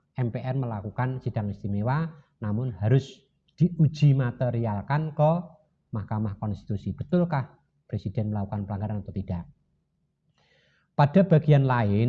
MPR melakukan sidang istimewa, namun harus diuji materialkan ke Mahkamah Konstitusi. Betulkah presiden melakukan pelanggaran atau tidak? Pada bagian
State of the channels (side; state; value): both; identical; correlation 1.00